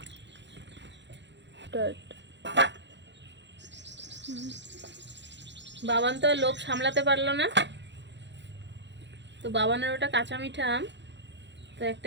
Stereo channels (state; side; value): late; left; 0.52 ms